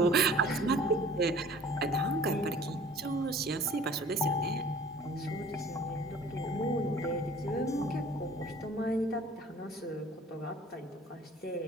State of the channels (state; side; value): normal; both; correlation 0.50